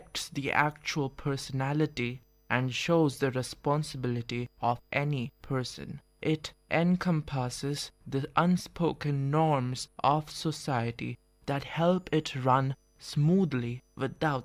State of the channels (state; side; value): identical; both; correlation 1.00